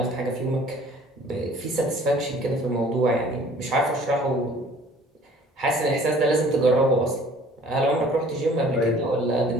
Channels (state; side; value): normal; both; correlation 0.53